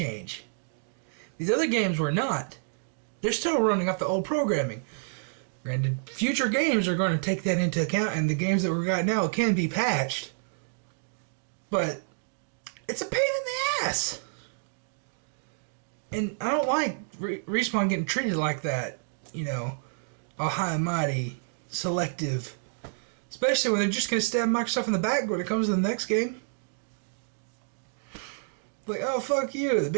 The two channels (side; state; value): left; silent; digital silence